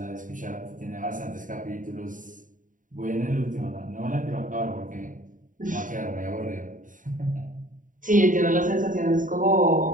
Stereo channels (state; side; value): late; left; 0.38 ms